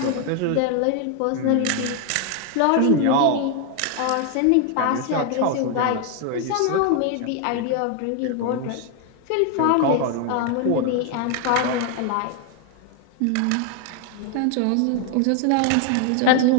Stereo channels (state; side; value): different; both; correlation 0.01